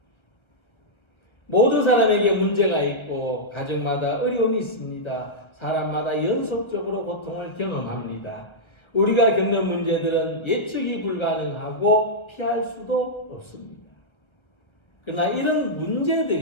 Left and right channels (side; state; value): right; late; 1.3 ms